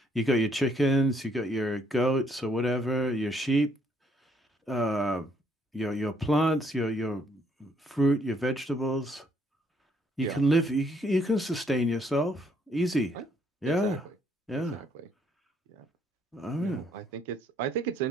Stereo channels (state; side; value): normal; both; correlation 0.68